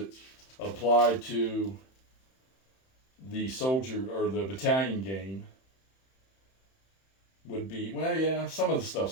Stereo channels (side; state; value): right; late; 31 ms